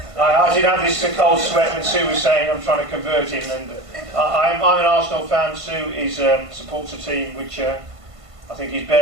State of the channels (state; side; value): late; left; 1.5 ms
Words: I did have this cold sweat when Sue was saying I'm trying to convert him, and I'm an Arsenal fan. Sue supports a team which I think is